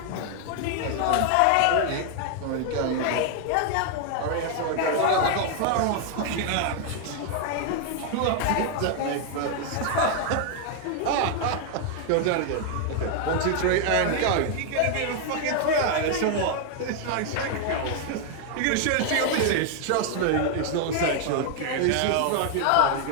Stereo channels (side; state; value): both; different; correlation 0.00